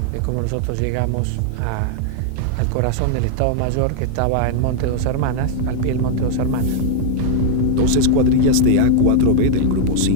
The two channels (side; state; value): both; different; correlation 0.00